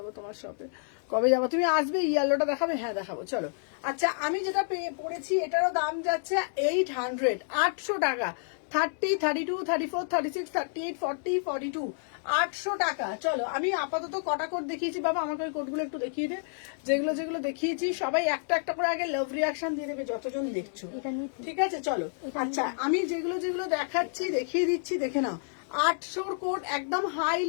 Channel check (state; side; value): silent; right; digital silence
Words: তোমার শপে কবে যাবো তুমি আসবে ইয়েলোটা দেখাবে হ্যাঁ দেখাবো চলো আচ্ছা আমি যেটা পড়েছি এটারও দাম যাচ্ছে 800 800 টাকা 30, 32, 34, 36, 38, 40, 42 800 টাকা চলো আমি আপাতত কটা কোড দেখিয়েছি বাবা আমাকে ওই কোডগুলো একটু দেখিয়ে দে যেগুলো দেখিয়েছি সবাই একটা একটা করে আগে লাভ রিয়াকশন দিয়ে দেবে যতজন দেখছো ঠিক আছে চলো আচ্ছা আমি যেগুলো দেখাচ্ছি দেখিয়ে দিচ্ছি দেখে নাও 800 কোড একদম